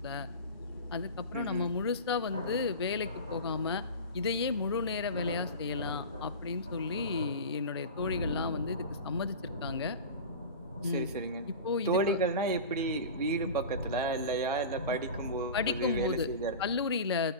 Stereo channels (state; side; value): inverted; both; correlation -0.30